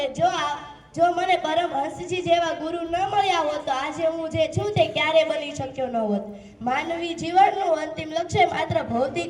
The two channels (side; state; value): both; identical; correlation 1.00